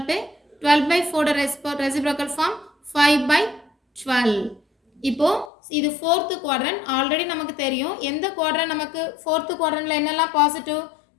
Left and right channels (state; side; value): drops out; right; at 5.5 s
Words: to 12 by 4 reciprocal form 5 by 12. இப்போ இது fourth quadrant. Already நமக்கு தெரியும் எந்த quadrant நமக்கு ஃபோர்த்து குவாட்ரண்ட்டில் என்னெல்லாம் பாசிட்டிவ்